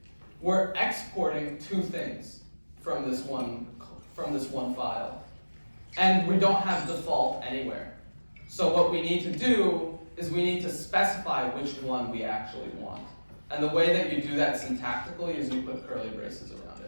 we're exporting two things from this one file. And we don't have default anywhere. So what we need to do is we need to specify which one we actually want. And the way that you do that syntactically is you put curly braces around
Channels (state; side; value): inverted; both; correlation -1.00